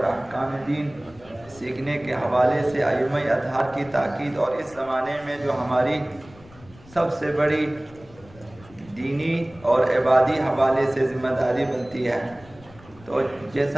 احکام دین سیکھنے کے حوالے سے ائمہ اطہار کی تاکید، اور اس زمانے میں جو ہماری سب سے بڑی دینی اور عبادی حوالے سے ذمہ داری بنتی ہے. تو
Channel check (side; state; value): left; noise; rumble, 23 dB below the sound